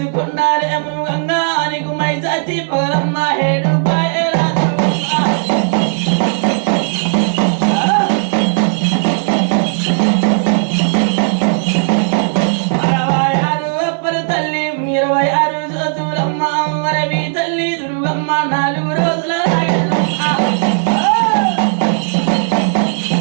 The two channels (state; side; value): silent; left; digital silence